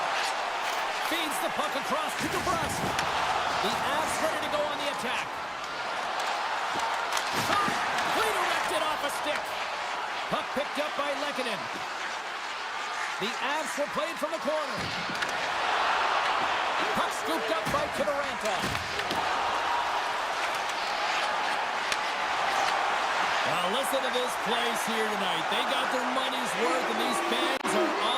Feeds the puck across to Dubrowski. The Avs ready to go on the attack. Shot! Redirected off a stick. Puck picked up by Lehkonen. The Avs will play it from the corner. Puck scooped up by Kivaranta. Now listen to this place here tonight. They got their money's worth, and these fans are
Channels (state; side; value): identical; both; correlation 1.00